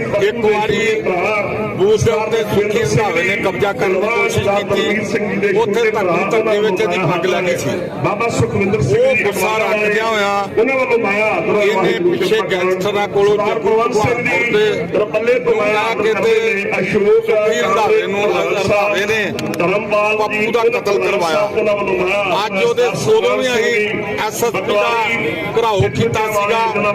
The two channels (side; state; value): both; identical; correlation 1.00